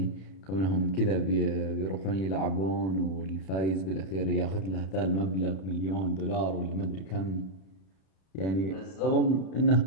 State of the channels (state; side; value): late; right; 31 ms